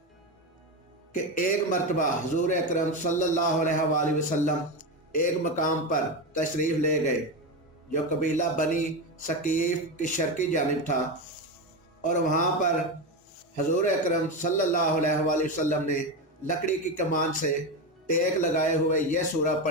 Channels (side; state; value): both; normal; correlation 0.15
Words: कि एक मरतबा हुज़ूर अकरम सल्लल्लाहु अलैहि वसल्लम एक मकाम पर तशरीफ़ ले गए जो कबीला बनी सकीफ की शर्की जानिब था, और वहाँ पर हुज़ूर अकरम सल्लल्लाहु अलैहि वसल्लम ने लकड़ी की कमान से टेक लगाए हुए यह सूरह